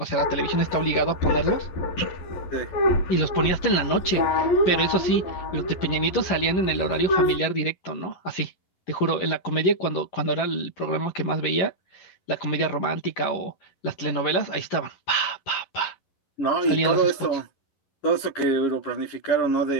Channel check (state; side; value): late; right; 11 ms